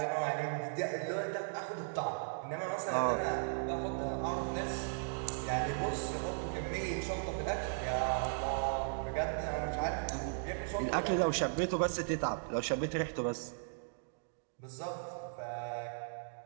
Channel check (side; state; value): left; silent; digital silence